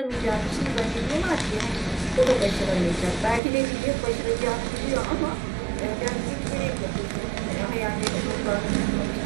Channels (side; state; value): left; drops out; at 3.4 s